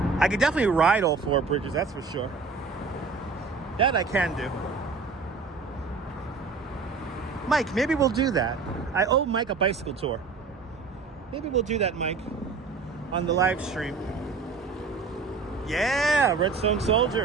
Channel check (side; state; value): left; quieter; 4.6 dB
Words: I could definitely ride all 4 bridges, that's for sure. That I can do. Mike, maybe we'll do that. I owe Mike a bicycle tour. Maybe we'll do that, Mike, on the live stream. Yeah, Redstone